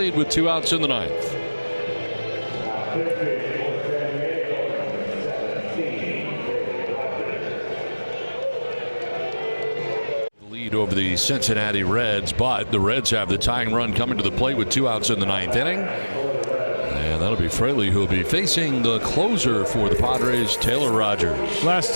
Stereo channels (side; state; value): both; inverted; correlation -1.00